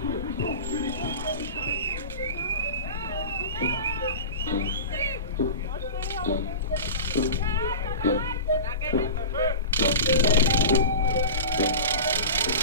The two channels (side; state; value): both; inverted; correlation -0.31